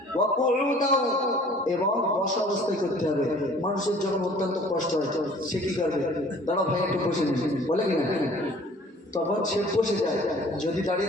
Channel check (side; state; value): both; normal; correlation 0.51